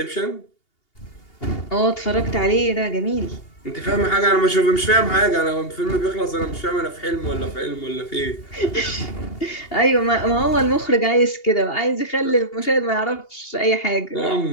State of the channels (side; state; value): right; late; 2.8 ms